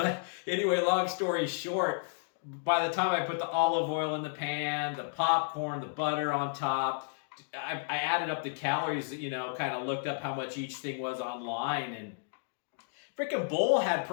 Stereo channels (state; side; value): silent; right; digital silence